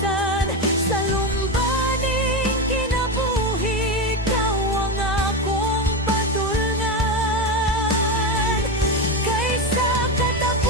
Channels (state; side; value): normal; both; correlation 0.16